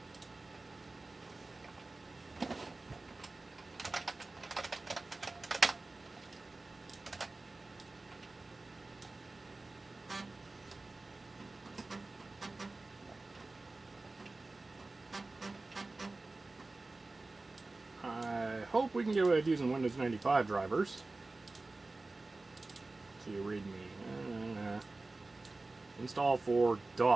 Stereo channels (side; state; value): left; quieter; 3.2 dB